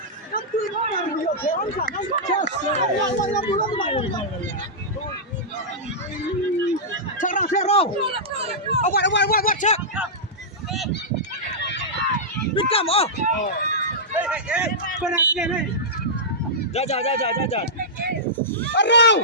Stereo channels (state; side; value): normal; both; correlation -0.12